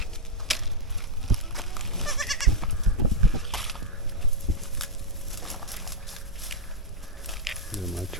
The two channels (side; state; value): both; normal; correlation -0.02